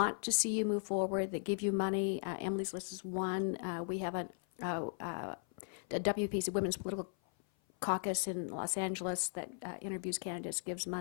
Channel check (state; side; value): silent; right; 53 dB below the other